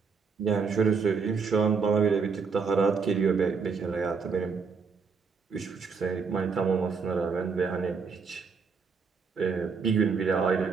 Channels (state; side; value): quieter; left; 5.4 dB